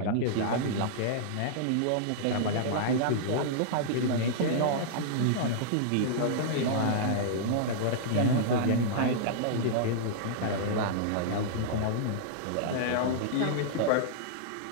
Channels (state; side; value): different; both; correlation -0.02